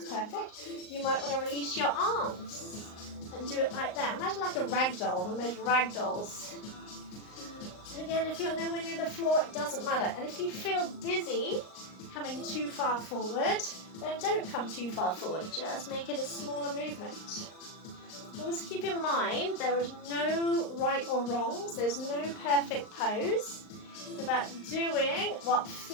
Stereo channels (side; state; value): right; late; 38 ms